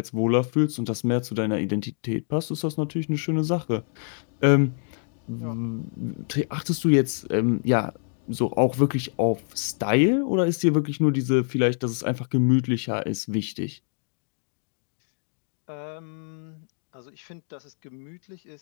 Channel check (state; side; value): silent; right; 61 dB below the other